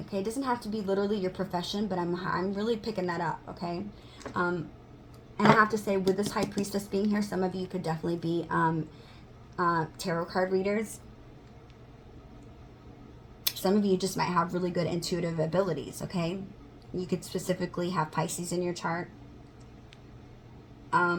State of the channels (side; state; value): both; identical; correlation 1.00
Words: okay? It doesn't have to be literally your profession, but I'm really picking that up, okay? And I have to say, with this High Priestess being here, some of you could definitely be tarot card readers. Some of you just might have really good intuitive abilities, okay? You could specifically have Pisces in your chart.